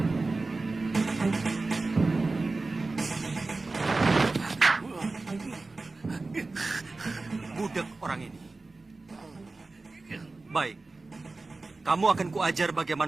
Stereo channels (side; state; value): left; quieter; 3.5 dB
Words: Budek orang ini. Baik, kamu akan kuajar